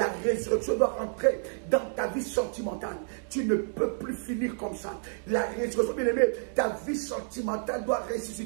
résurrection doit entrer dans ta vie sentimentale. Tu ne peux plus finir comme ça. La résurrection, bien aimé, ta vie sentimentale doit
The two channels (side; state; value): left; silent; digital silence